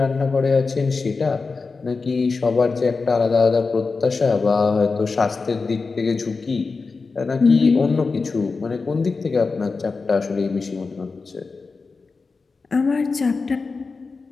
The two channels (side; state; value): right; quieter; 4.3 dB